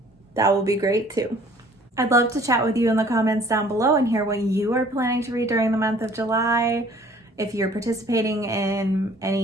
that will be great too. I'd love to chat with you in the comments down below and hear what you are planning to read during the month of July. If you're participating in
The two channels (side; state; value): both; normal; correlation 0.54